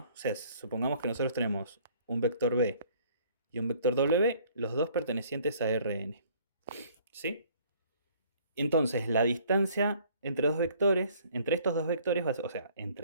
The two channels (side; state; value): both; inverted; correlation -0.57